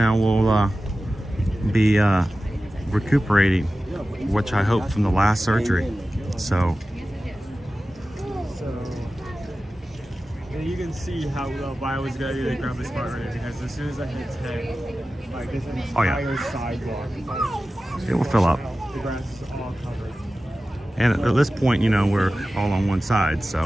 we'll be recuperating, which I hope from the last surgery. So you can see how I was going to grab the spot right here, because as soon as I hit 10, like this entire sidewalk, it will fill up. the grass is all covered. And at this point, you know, we're all on one side,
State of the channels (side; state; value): both; normal; correlation 0.95